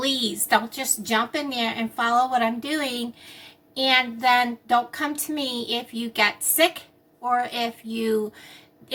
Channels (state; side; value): identical; both; correlation 1.00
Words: don't just jump in there and follow what I'm doing and then don't come to me if you get sick or if